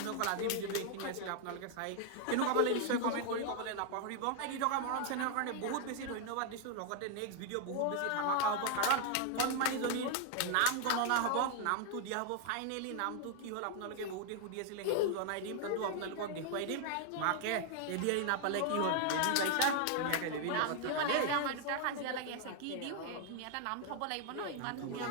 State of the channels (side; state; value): both; different; correlation 0.00